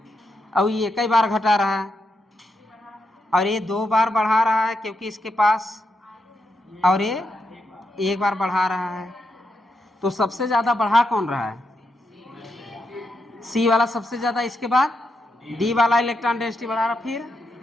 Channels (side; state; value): both; normal; correlation 0.83